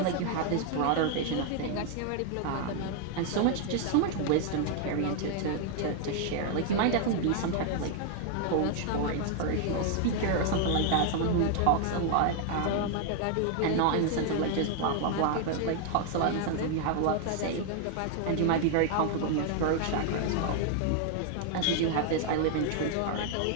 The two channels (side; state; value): both; different; correlation 0.00